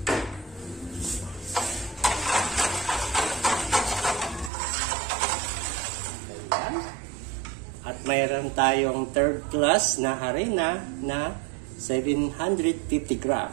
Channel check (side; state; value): left; drops out; at 4.5 s